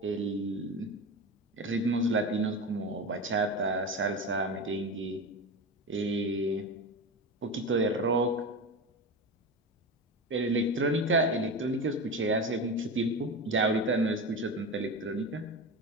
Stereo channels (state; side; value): normal; both; correlation 0.23